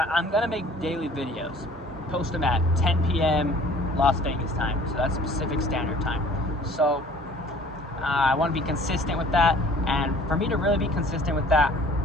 I'm gonna make daily videos, post them at 10 p.m. Las Vegas time, so that's Pacific Standard Time. So I want to be consistent with that, and for me to really be consistent with that,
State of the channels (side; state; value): both; normal; correlation 0.51